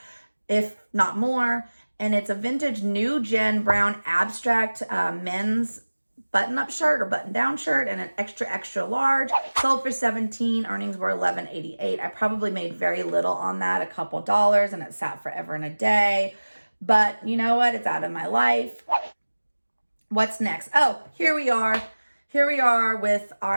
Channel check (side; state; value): both; inverted; correlation -1.00